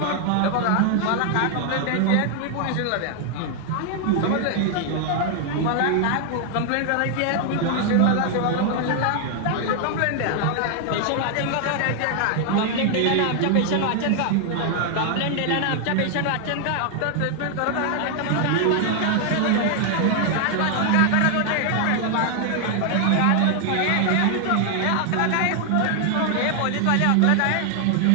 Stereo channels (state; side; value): different; both; correlation 0.00